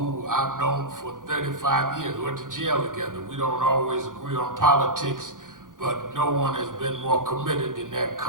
I've known for 35 years, went to jail together. We don't always agree on politics, but no one has been more committed than that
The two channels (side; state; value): left; late; 0.89 ms